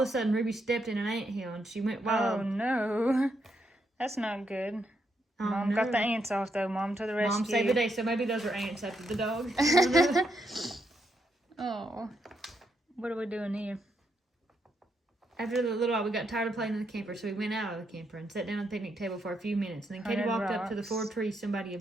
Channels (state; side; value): normal; both; correlation 0.79